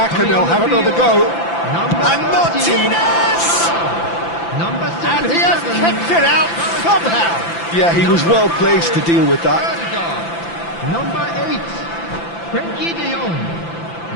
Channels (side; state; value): right; late; 5.9 ms